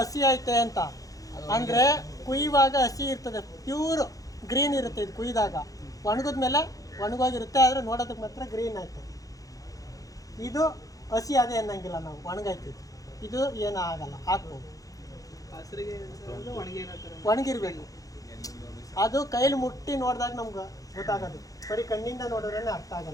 ಐತೆ ಅಂತ ಅಂದರೆ ಕುಯ್ಯುವಾಗ ಹಸಿ ಇರ್ತದೆ, ಪ್ಯೂರ್ ಗ್ರೀನ್ ಇರುತ್ತೆ. ಇದು ಕುಯ್ದಾಗ ಒಣಗಿದ್ಮೇಲೆ ಒಣಗೋಗಿರುತ್ತೆ, ಆದರೆ ನೋಡೋದಕ್ಕೆ ಮಾತ್ರ ಗ್ರೀನ್ ಆಯ್ತು. ಇದು ಹಸಿ ಅದೇ ಅನ್ನಂಗಿಲ್ಲ, ನಾವು ಒಣಗೈತಿದ್ದು. ಇದು ಏನೂ ಆಗಲ್ಲ, ಹಾಕ್ಬೋದು. ಒಣಗಿರ್ಬೇಕು. ಅದು ಕೈಲಿ ಮುಟ್ಟಿ ನೋಡಿದಾಗ ನಮ್ಗೆ ಗೊತ್ತಾಗೋದು, ಬರೀ ಕಣ್ಣಿಂದ ನೋಡಿದ್ರೆ ಅರ್ಥ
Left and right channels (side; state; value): right; late; 0.17 ms